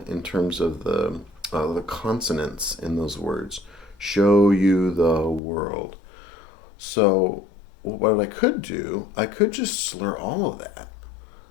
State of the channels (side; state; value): right; drops out; at 5.4 s